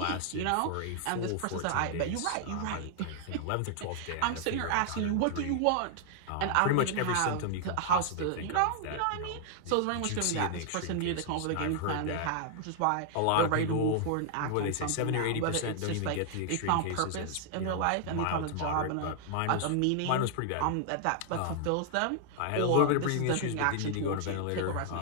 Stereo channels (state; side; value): different; both; correlation 0.00